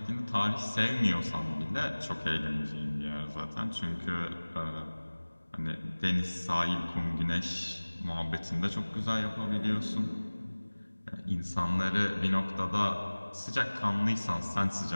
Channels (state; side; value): inverted; both; correlation -1.00